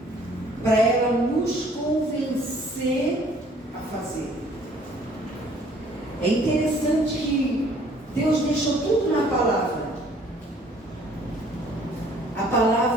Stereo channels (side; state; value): both; normal; correlation 0.57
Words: para ela nos convencer a fazer. É interessante que Deus deixou tudo na palavra. A